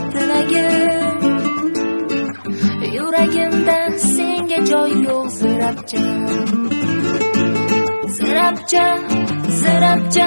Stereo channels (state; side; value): inverted; both; correlation -1.00